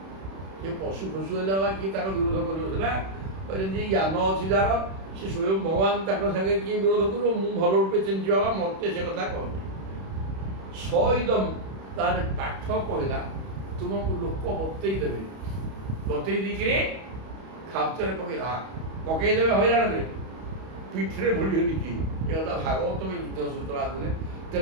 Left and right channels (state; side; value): late; left; 31 ms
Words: ସେ ପଶୁ ଫଶୁ ହେଲେ ବା କିଏ ତାର ବିରୋଧ କରିବ ସିନା, ଯେମିତି ଜ୍ଞାନ ଅଛି ଯାହାର ସେ ସ୍ୱୟଂ ଭଗବାନ ତାଙ୍କ ସାଙ୍ଗେ କିଏ ବିରୋଧ କରିବ? ମୁଁ ଭଲ ରୂପେ ଚିହ୍ନିଛି ବାବା, ମୋତେ ସେ କଥା କହନ୍ତି। ସଇଦମ୍ ତାର ପାଠ କହିଲା ତୁମକୁ ଲୋକ ବତେଇ ଦେବେ, ବତେଇ ଦେଇକିରି ଖାପ୍ତରେ ପକେଇଦେବେ ହଇରାଣରେ, ପିଠିରେ ଭୁଳିବେନି କି ଏ କଥା ଭାଗବତ ଯୁଦ୍ଧ ସୂତ୍ର ଆଦିରେ।